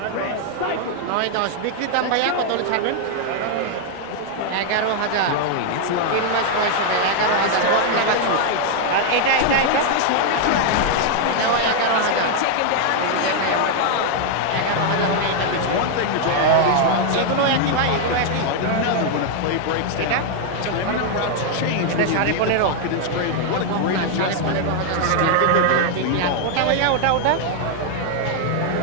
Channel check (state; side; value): different; both; correlation 0.00